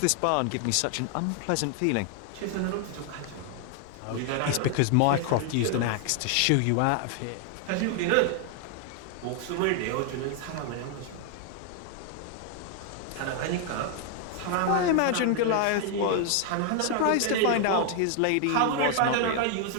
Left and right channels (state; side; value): different; both; correlation 0.00